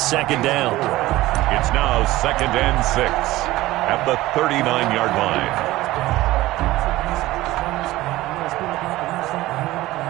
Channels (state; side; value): quieter; left; 17.3 dB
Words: second down. It's now 2nd and 6 at the 39-yard line.